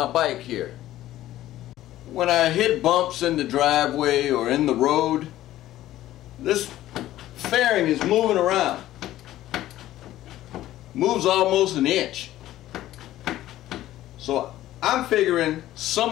bike here. When I hit bumps in the driveway or in the road, this fairing is moving around. Moves almost an inch. So I'm figuring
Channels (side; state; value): right; quieter; 14.3 dB